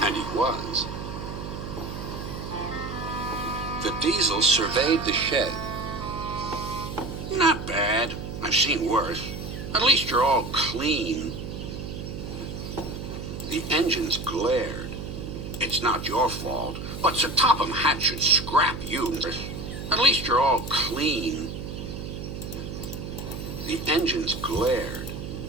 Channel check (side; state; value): right; noise; hum, 7 dB below the sound